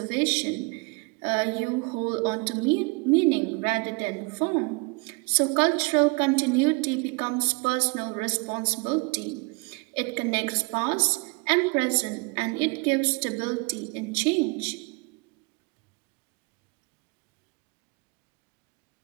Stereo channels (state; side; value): quieter; left; 29.8 dB